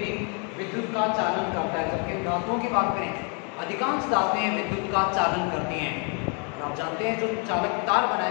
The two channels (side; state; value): right; quieter; 36.9 dB